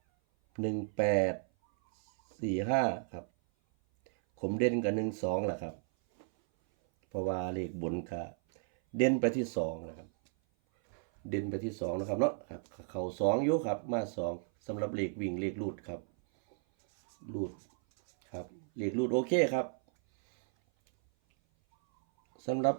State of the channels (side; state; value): left; silent; 55 dB below the other